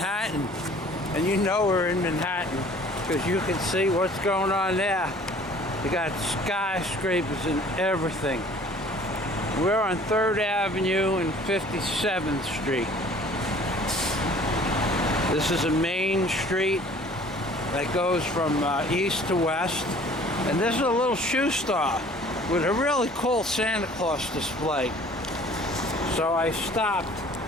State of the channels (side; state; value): both; normal; correlation 0.51